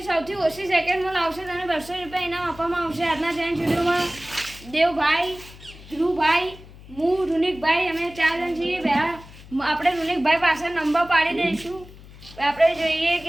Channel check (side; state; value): left; noise; hum, 19 dB below the sound